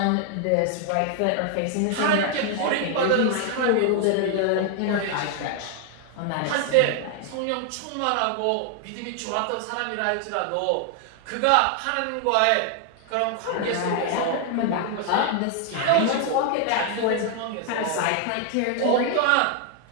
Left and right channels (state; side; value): different; both; correlation 0.00